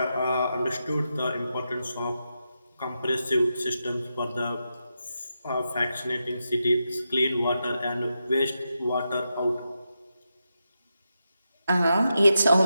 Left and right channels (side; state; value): both; inverted; correlation -0.87